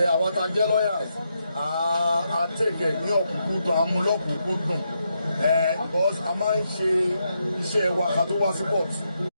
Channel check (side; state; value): both; inverted; correlation -0.82